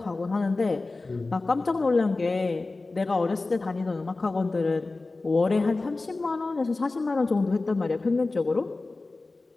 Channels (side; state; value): right; quieter; 3.4 dB